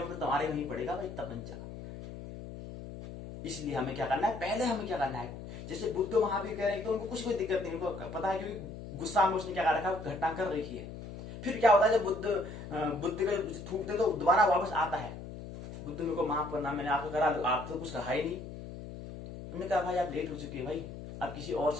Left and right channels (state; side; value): noise; left; hum, 11 dB below the sound